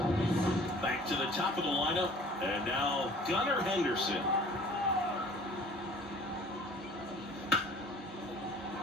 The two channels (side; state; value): both; normal; correlation 0.49